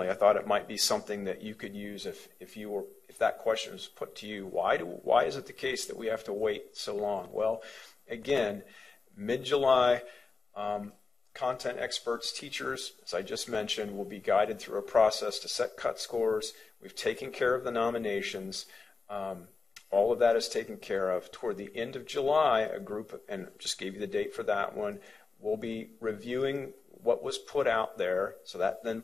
I thought it might be something that you could use if that question was put to you. Why is it the case that we have to wait so long? Well, again, mid-July, content experts, teachers, as I just mentioned, will be guided through a process to set cut scores. We've taken care of the nominations. All of that is taken care of. Toward the end of July, a group, and just gave you the date for that one, will be reviewing what was put out there. So that then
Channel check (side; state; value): right; quieter; 4.3 dB